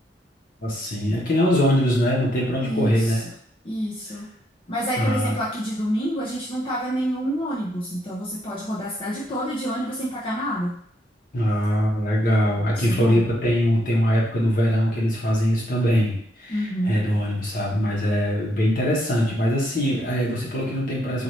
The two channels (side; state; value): both; normal; correlation 0.76